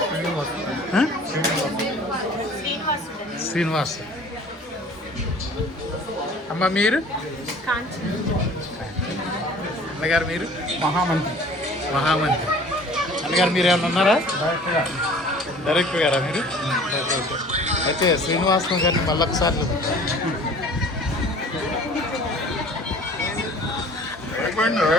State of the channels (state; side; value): normal; both; correlation 0.48